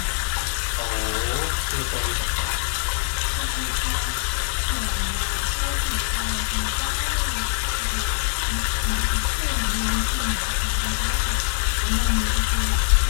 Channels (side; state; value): right; silent; digital silence